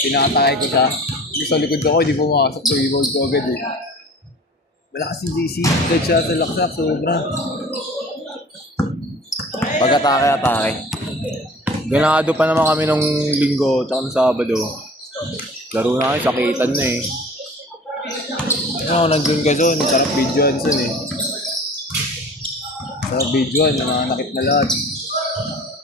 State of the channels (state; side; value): normal; both; correlation 0.43